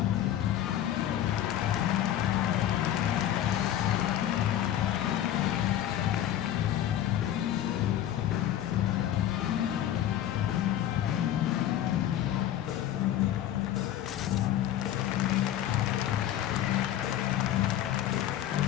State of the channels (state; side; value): quieter; right; 11.8 dB